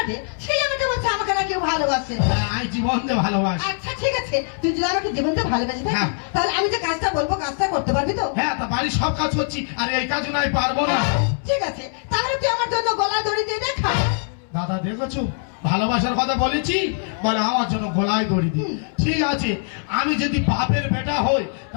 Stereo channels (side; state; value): right; silent; 64 dB below the other